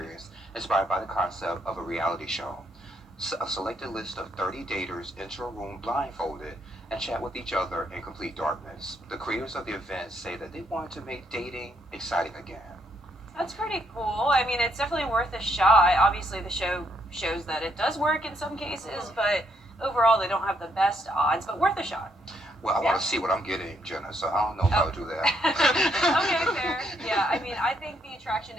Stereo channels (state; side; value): normal; both; correlation 0.74